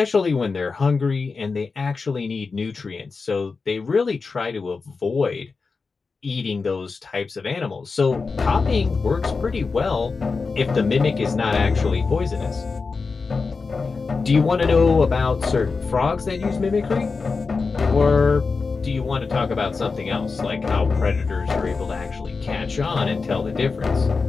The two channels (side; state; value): right; quieter; 4.5 dB